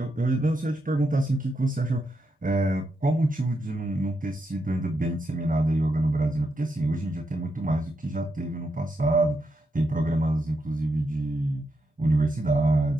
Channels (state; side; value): normal; both; correlation 0.83